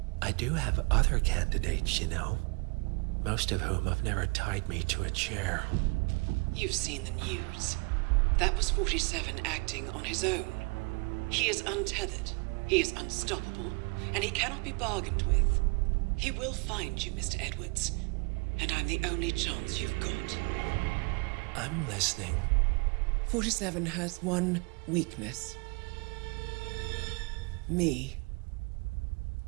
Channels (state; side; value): quieter; left; 31.1 dB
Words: I do have other candidates, you know. Most of whom have never tied me to a chair. You've seen the news. That was 47 acting on his own. He is untethered, he is unstoppable, and he cannot be bargained with. He will find you, Mr. Edwards, and I'm the only chance you've got. I'm listening. 47 has one weakness. Me.